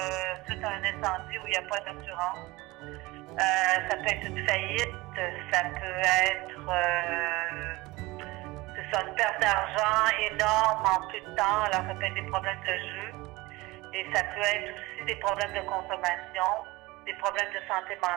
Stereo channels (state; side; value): quieter; left; 21.3 dB